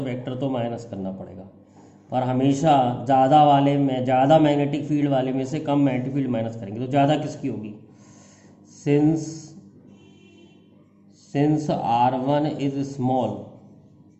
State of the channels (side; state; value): both; identical; correlation 1.00